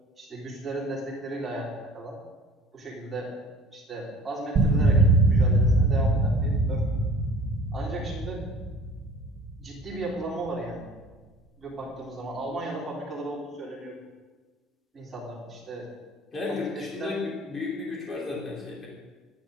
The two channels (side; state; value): both; normal; correlation 0.47